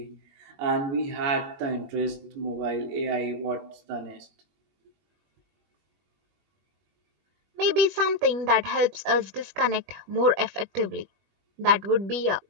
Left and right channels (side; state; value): left; late; 20 ms